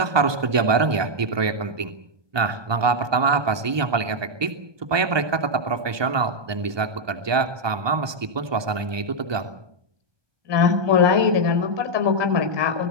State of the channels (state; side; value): late; left; 1.2 ms